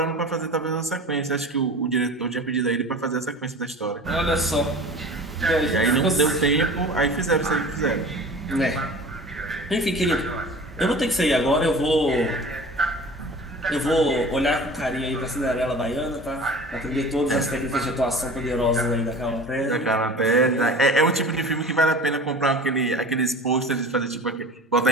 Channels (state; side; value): normal; both; correlation 0.39